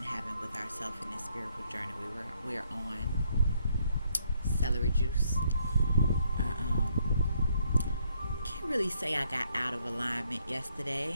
having with ourselves in this spiritual journey. We're on celery juice. Can't really say I got out of alignment yesterday.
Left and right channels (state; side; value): inverted; both; correlation -0.71